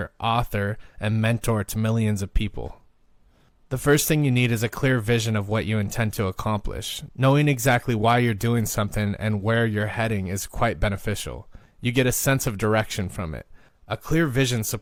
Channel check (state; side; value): identical; both; correlation 1.00